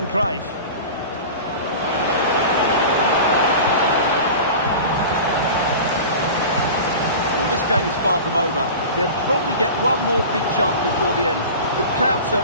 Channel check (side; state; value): both; inverted; correlation -0.34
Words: Cruyff. Well, this game is far from over. They'll probably get one more big chance before the end. The crowd